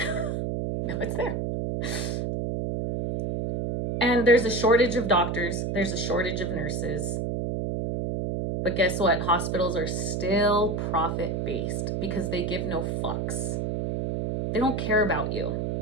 Now it's there. And there's a shortage of doctors. There's a shortage of nurses. But guess what? Hospitals are still profit-based because they give no fucks. They don't care about you.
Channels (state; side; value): noise; right; hum, 1 dB below the sound